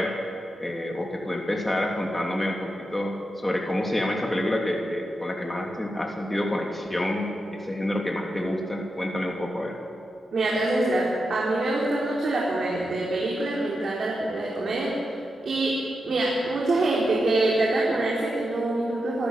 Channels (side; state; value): both; normal; correlation 0.88